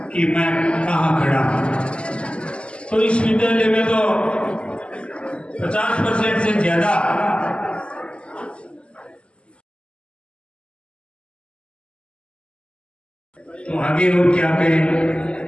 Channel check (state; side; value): late; right; 0.054 ms